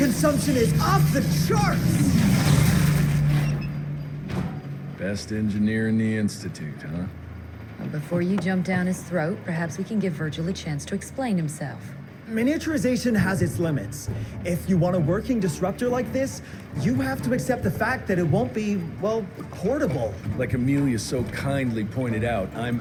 is off the charts! Best engineer in the Institute, huh? Well, before you jump down his throat, perhaps we can give Virgil a chance to explain himself. Miniaturization has its limits. If you want a working disruptor like this, you have to accept the fact that it won't be, well, portable. Like Amelia so kindly pointed out,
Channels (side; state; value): both; identical; correlation 1.00